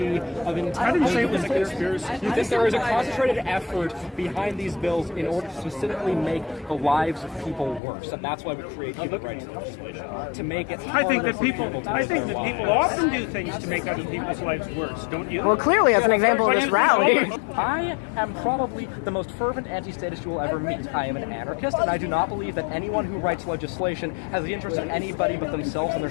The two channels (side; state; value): right; drops out; at 7.8 s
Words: of intent. I didn't say it was a conspiracy. You think there is a concentrated effort behind these bills in order to specifically make the lives of people worse, and that's why we create human rights legislation to make it. I think that harder for people. to I live think their that people lives. often do things to make other people's lives worse. Don't you? Well, clearly, as an example of this rally. I am probably the most fervent anti-statist you will ever meet. I am an anarchist, and I do not believe that anyone who writes legislation has the interest of anybody but themselves and their